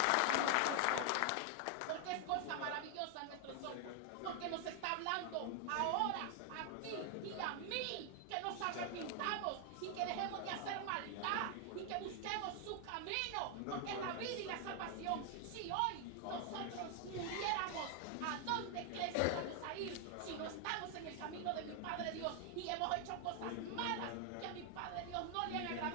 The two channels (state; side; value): different; both; correlation 0.00